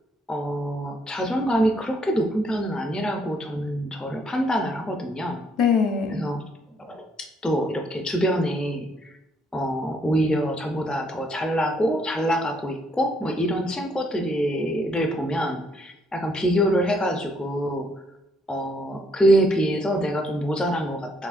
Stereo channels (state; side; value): normal; both; correlation 0.70